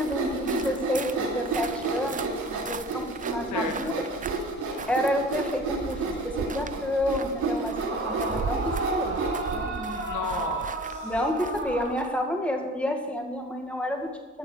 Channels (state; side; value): normal; both; correlation 0.43